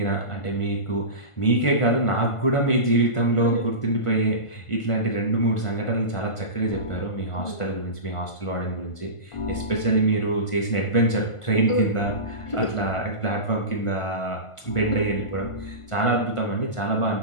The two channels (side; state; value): right; late; 1.5 ms